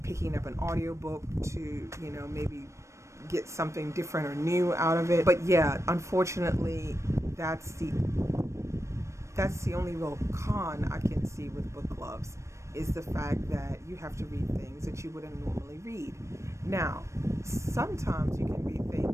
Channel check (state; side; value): late; left; 0.14 ms